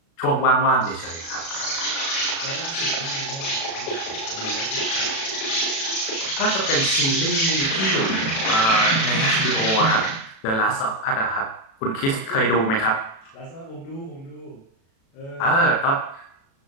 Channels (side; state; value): right; late; 36 ms